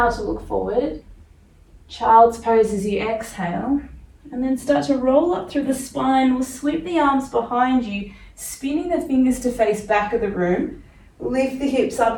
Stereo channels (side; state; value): both; identical; correlation 1.00